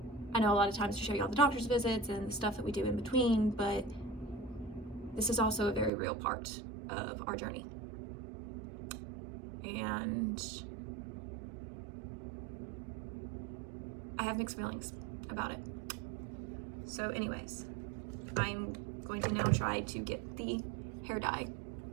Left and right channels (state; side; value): drops out; left; at 5.9 s